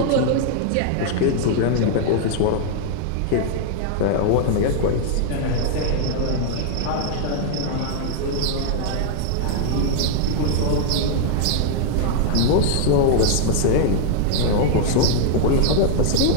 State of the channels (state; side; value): different; both; correlation 0.00